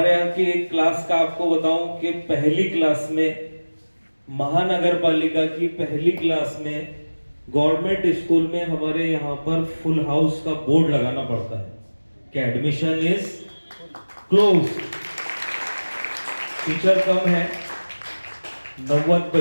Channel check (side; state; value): both; inverted; correlation -1.00